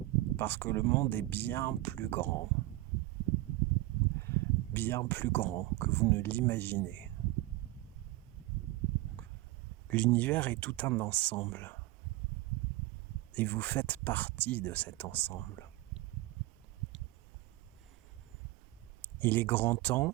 Parce que le monde est bien plus grand. Bien plus grand que vous ne l'imaginez. L'univers est tout un ensemble. Et vous faites partie de cet ensemble. Il est grand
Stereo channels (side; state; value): left; quieter; 18.6 dB